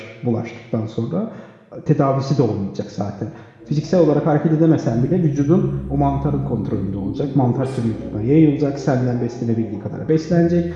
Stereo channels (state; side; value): identical; both; correlation 1.00